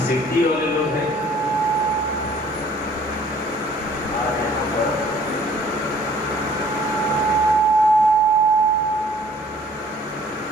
सिद्धि वाले लोग हैं,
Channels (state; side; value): normal; both; correlation 0.56